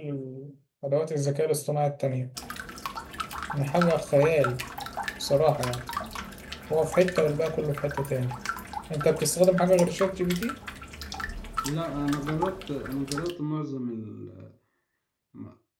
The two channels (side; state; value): both; identical; correlation 1.00